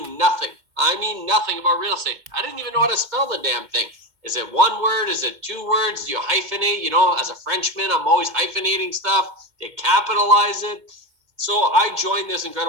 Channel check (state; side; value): late; left; 2.1 ms